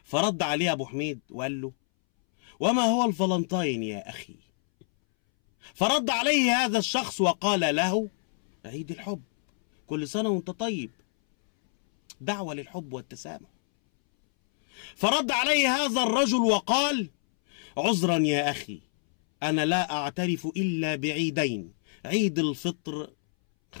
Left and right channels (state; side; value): silent; right; 60 dB below the other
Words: فرد عليه أبو حميد وقال له: وما هو الفالنتاين يا أخي؟ فرد عليه هذا الشخص وقال له: عيد الحب، كل سنة وانت طيب، دعوة للحب والتسامح. فرد عليه هذا الرجل وقال: عذرا يا أخي، أنا لا أعترف إلا بعيدين، عيد الفطر